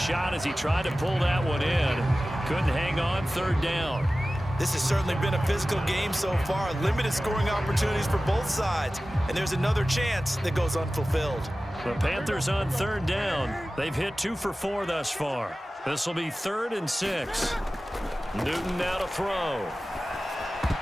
as he tried to pull that one in. Couldn't hang on, 3rd down. This has certainly been a physical game so far. Limited scoring opportunities for both sides. And there's another chance that goes unfulfilled. The Panthers on 3rd down. They've hit 2 for 4 thus far. This will be 3rd and 6. Newton now to throw.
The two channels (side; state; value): both; normal; correlation 0.96